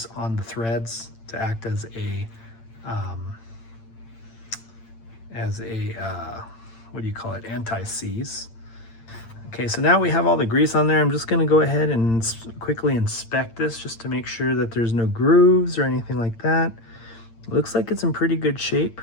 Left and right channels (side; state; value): right; late; 8.8 ms